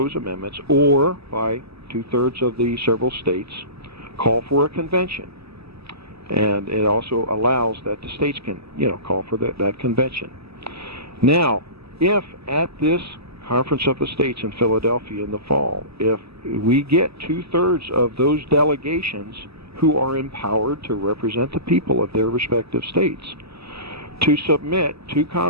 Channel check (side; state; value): left; late; 0.78 ms